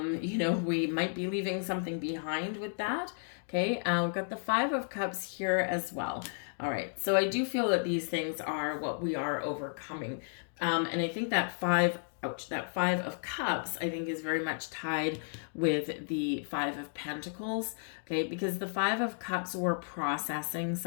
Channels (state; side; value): silent; right; digital silence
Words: might be leaving something behind with that. Okay. We've got the 5 of Cups here as well. All right. So I do feel that these things are what we are overcoming. And I think that 5 of Cups, I think, is very much tied with the 5 of Pentacles, okay? Because the 5 of Cups, we're processing